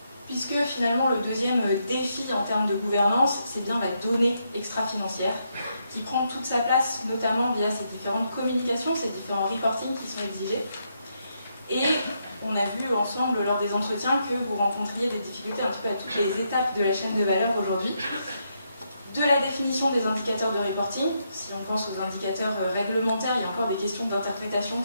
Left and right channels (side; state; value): both; inverted; correlation -0.79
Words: Puisque finalement le deuxième défi en termes de gouvernance, c'est bien la donnée extra-financière, qui prend toute sa place notamment via ces différentes communications, ces différents reportings qui sont exigés. Et on a vu ensemble lors des entretiens que vous rencontriez des difficultés un petit peu à toutes les étapes de la chaîne de valeur aujourd'hui. De la définition des indicateurs de reporting, si on pense aux indicateurs réglementaires, il y a encore des questions d'interprétation